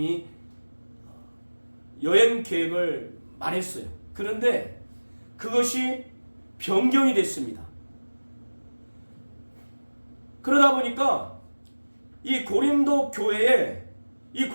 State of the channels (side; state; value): both; inverted; correlation -1.00